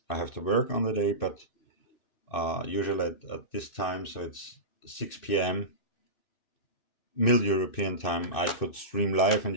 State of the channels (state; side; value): late; right; 2.6 ms